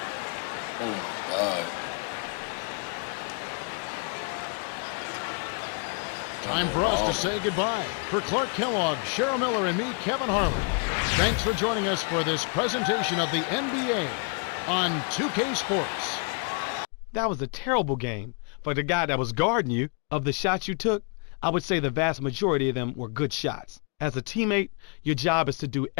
Oh my God. Time for us to say goodbye. For Clark Kellogg, Cheryl Miller, and me, Kevin Harlan, thanks for joining us for this presentation of the NBA on 2K Sports. That was a terrible game. For the guy that was guarding you, of the shots you took, I would say the vast majority of them were good shots. As a teammate, your job is to do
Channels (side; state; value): right; quieter; 38.5 dB